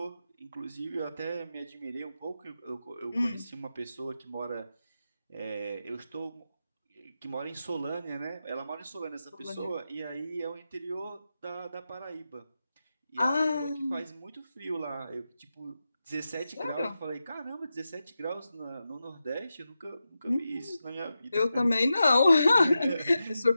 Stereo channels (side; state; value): both; inverted; correlation -0.90